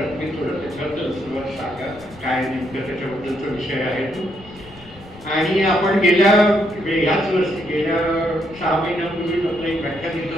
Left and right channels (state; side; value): noise; left; rumble, 21 dB below the sound